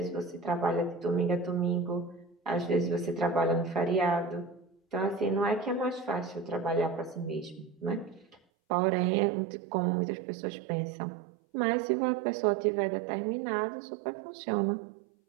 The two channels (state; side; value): drops out; left; at 8.4 s